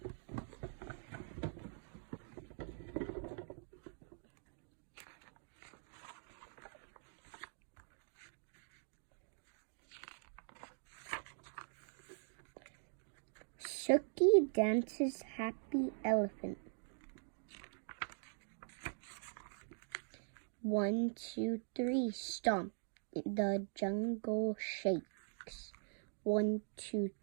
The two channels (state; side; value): silent; left; digital silence